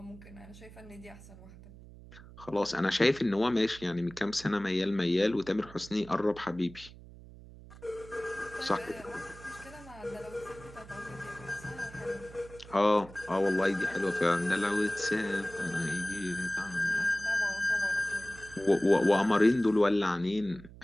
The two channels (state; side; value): noise; right; hum, 18 dB below the sound